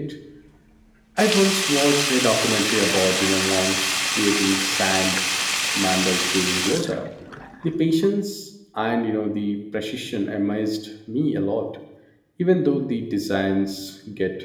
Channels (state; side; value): identical; both; correlation 1.00